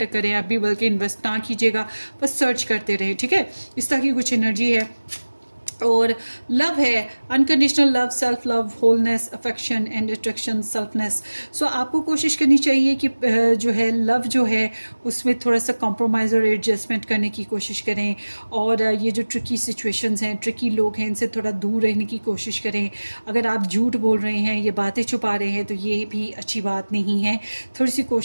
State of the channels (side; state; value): both; inverted; correlation -1.00